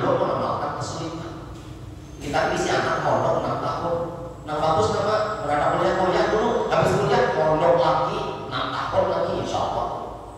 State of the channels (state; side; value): identical; both; correlation 1.00